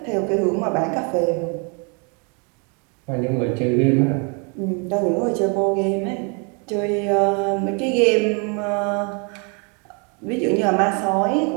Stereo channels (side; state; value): left; quieter; 35.5 dB